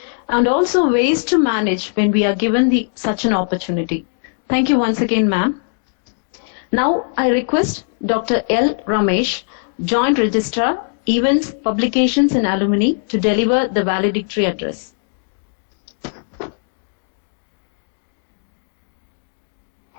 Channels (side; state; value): right; silent; digital silence